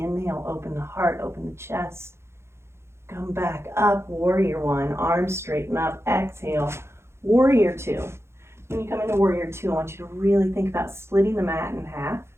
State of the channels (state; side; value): late; left; 0.13 ms